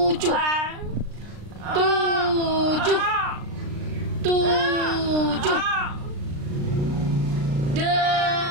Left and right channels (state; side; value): late; left; 36 ms